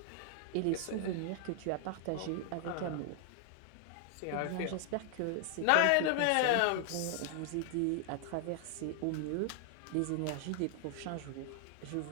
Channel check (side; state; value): both; different; correlation 0.00